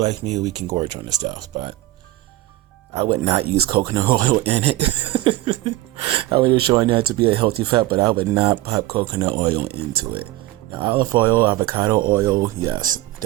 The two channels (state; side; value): quieter; left; 17.1 dB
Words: like me, we can gorge on this stuff, but I would not use coconut oil in it. I was showing that to be a healthy fat, but I would not pop coconut oil into it. Now, olive oil, avocado oil, yes,